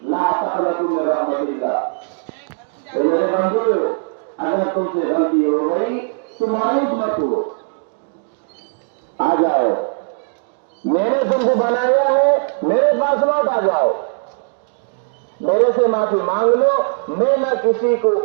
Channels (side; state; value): left; silent; digital silence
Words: لا تقنطوا من رحمت اللہ. تو میرے بندو، اگر تم سے غلطی ہو گئی تو مایوس مت ہو، آ جاؤ. میں نے تم کو بنایا ہے، میرے پاس لوٹ آ جاؤ، میرے سے معافی مانگ لو. میں نہ کسی کو